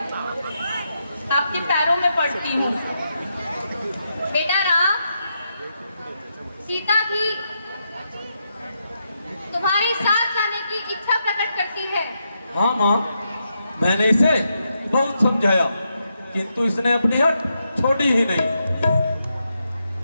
आपके पैरों में पड़ती हूँ। बेटा राम, सीता भी तुम्हारे साथ जाने की इच्छा प्रकट करती है। हाँ माँ, मैंने इसे बहुत समझाया, किंतु इसने अपनी हट छोड़ी ही नहीं।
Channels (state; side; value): inverted; both; correlation -0.83